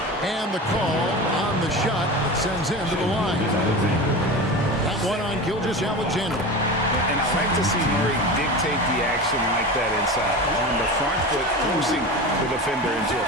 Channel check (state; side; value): normal; both; correlation 0.29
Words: And the call on the shot that sends him to the line. That one on Gilgeous-Alexander. And I like to see Murray dictate the action like that inside. On the front foot, forcing the defender into a